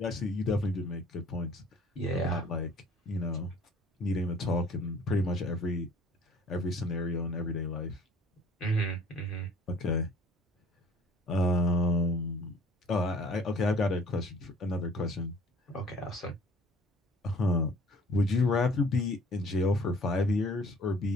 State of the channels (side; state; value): both; normal; correlation 0.52